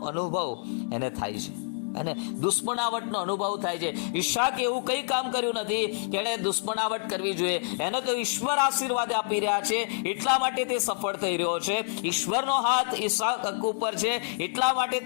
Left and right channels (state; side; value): silent; right; digital silence